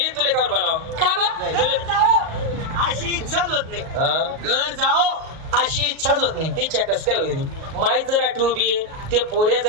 तुला कावर बोलाव का बा घर जाओ अशी इच्छाच होत नाही घर जाओ अशी इच्छाच होत नाही इच्छा कस काय होईल माहीत जर आठवू बी ते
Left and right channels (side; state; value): left; late; 38 ms